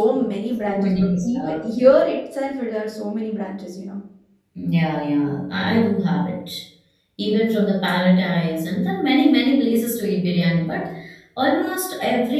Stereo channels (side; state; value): both; identical; correlation 1.00